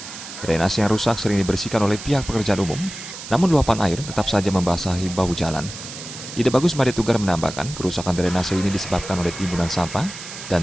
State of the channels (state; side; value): noise; right; hiss, 11 dB below the sound